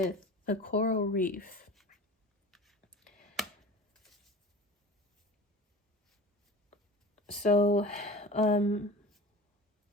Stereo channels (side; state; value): both; normal; correlation 0.35